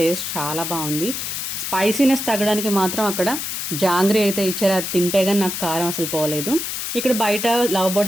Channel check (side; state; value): left; noise; hiss, 4 dB below the sound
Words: చాలా బాగుంది. స్పైసీనెస్ తగ్గడానికి మాత్రం అక్కడ జాంగ్రీ అయితే ఇచ్చారు. అది తింటే కానీ నాకు కారం అసలు పోలేదు. ఇక్కడ బయట లవ్